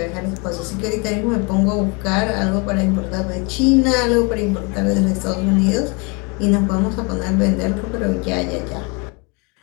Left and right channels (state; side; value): quieter; right; 30.5 dB